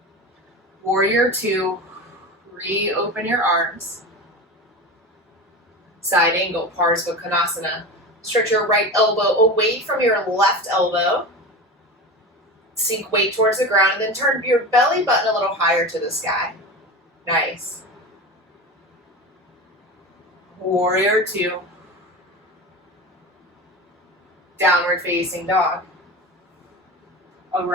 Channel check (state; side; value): normal; both; correlation 0.28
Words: Warrior 2, reopen your arms. Side angle, Parsva Konasana. Stretch your right elbow away from your left elbow. Sink weight towards the ground and then turn your belly button a little higher to the sky. Nice. Warrior 2. Downward facing dog.